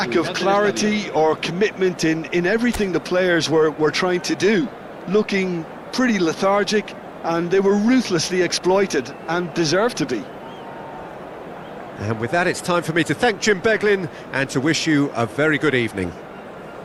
of clarity or commitment in everything the players were trying to do. Looking pretty lethargic, and they were ruthlessly exploited, and deserved to be. And with that, it's time for me to thank Jim Beglin and to wish you a very good evening.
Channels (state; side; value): identical; both; correlation 1.00